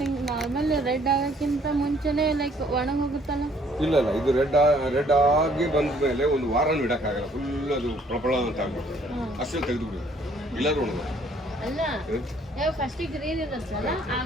ನಾರ್ಮಲ್ ರೆಡ್ ಆಗೋಕ್ಕಿಂತ ಮುಂಚೆನೇ ಲೈಕ್ ಒಣಗಿ ಹೋಗುತ್ತಲ್ಲ. ಇಲ್ಲ ಇದು ರೆಡ್ ಆಗಿ ಬಂದ ಮೇಲೆ ಒಂದು ವಾರನೂ ಇಡೋಕ್ಕಾಗಲ್ಲ. ಫುಲ್ ಅದು ಪ್ರಬಳ ಅಂತ ಆಗ್ಬಿಡ್ತದೆ. ಅಷ್ಟೇ ತೆಗೆದುಬಿಡೋದು, ಇಲ್ಲಾದ್ರೂ ಒಣಗ ಅಲ್ಲ. ಫಸ್ಟಿಗೆ ಗ್ರೀನ್ ಇರುತ್ತಲ್ಲ,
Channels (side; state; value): both; normal; correlation 0.62